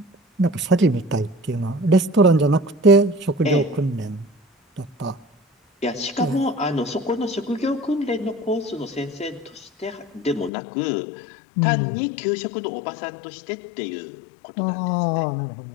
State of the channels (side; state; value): right; drops out; at 10.5 s